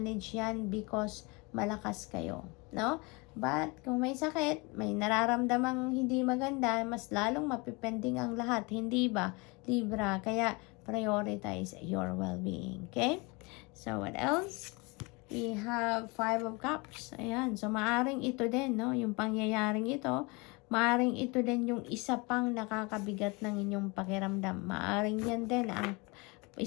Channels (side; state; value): right; quieter; 27.6 dB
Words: yan because malakas kayo, no? But kung may sakit, may nararamdamang hindi maganda, mas lalong mapipending ang lahat, hindi ba, Libra? Kaya prioritize your well-being, okay? So, what else? We have Five of Cups. Ayan. So, maaring ito din, no? Yung pangyayaring ito, maaring ito din yung isa pang nakakabigat ng inyong pakiramdam. Maaring yan din ang